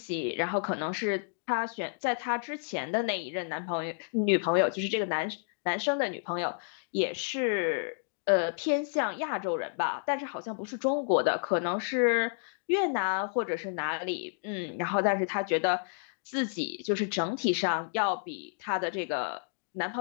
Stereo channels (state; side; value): silent; right; digital silence